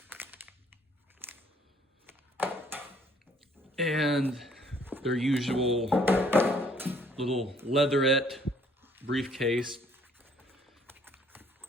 And their usual little leatherette briefcase.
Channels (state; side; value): normal; both; correlation 0.62